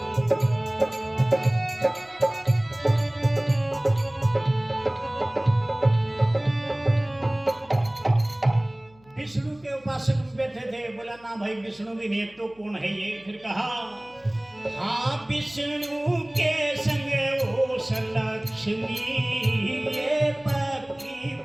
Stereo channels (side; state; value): left; noise; hum, 29 dB below the sound